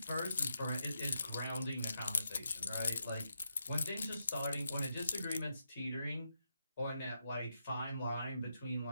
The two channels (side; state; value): both; inverted; correlation -0.83